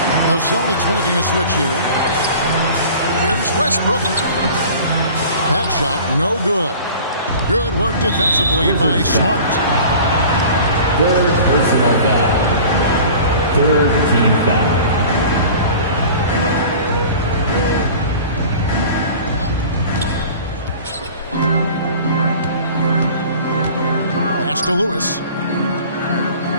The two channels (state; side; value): inverted; both; correlation -0.42